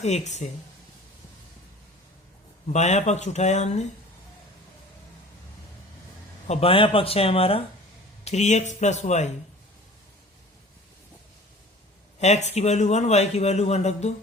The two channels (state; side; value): normal; both; correlation 0.44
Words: 1 से बायां पक्ष उठाया हमने, और बायां पक्ष है हमारा 3x प्लस वाई। x की वैल्यू 1, y की वैल्यू 1 रख दो।